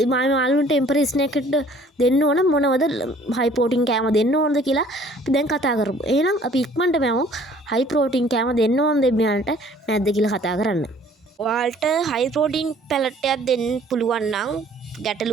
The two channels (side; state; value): both; normal; correlation 0.55